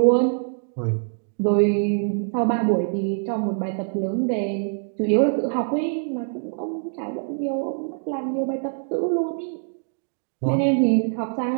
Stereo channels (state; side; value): silent; left; digital silence